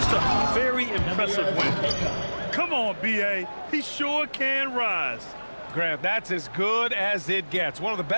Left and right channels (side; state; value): both; inverted; correlation -1.00